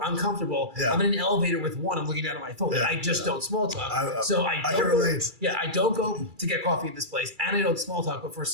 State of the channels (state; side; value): late; left; 2.3 ms